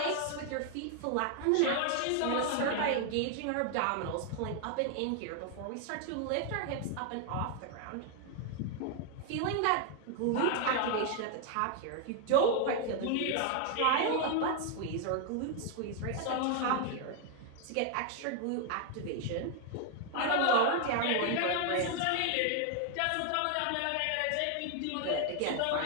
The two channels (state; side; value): different; both; correlation 0.00